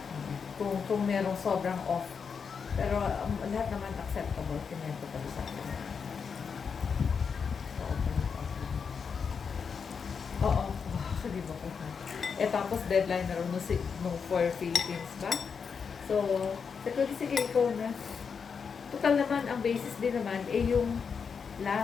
Kung merong sobrang off. Pero lahat naman acceptable, kinento pala sa akin. Oo, sabi mo ko. Tapos deadline na rin nung for Philippines ba? So, Sabi ko, sige, ikaw na. Total naman, ang basis din naman, yung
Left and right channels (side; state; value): right; quieter; 6.1 dB